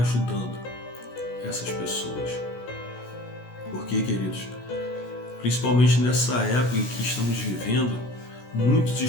essas pessoas? Porque, queridos, principalmente nessa época em que estamos vivendo, muitos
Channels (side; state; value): right; late; 16 ms